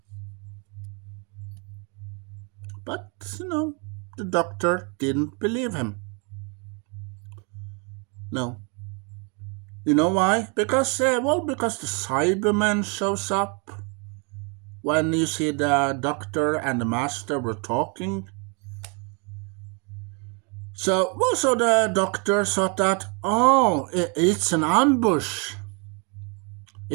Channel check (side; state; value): left; quieter; 34.7 dB